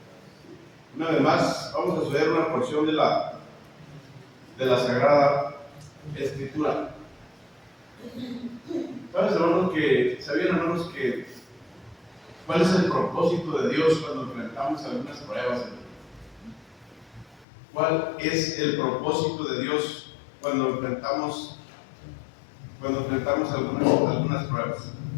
Una vez más, vamos a estudiar una porción de la Sagrada Escritura. ¿Sabían, hermanos, que cuál es el propósito de Dios cuando enfrentamos algunas pruebas? ¿Cuál es el propósito de Dios cuando enfrentamos algunas pruebas?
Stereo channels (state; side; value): drops out; right; at 17.4 s